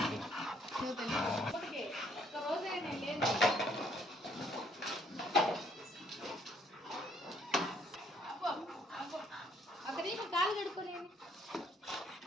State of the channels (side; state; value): both; normal; correlation 0.66